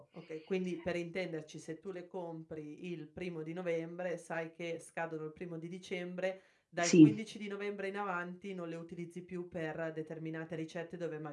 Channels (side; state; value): both; identical; correlation 1.00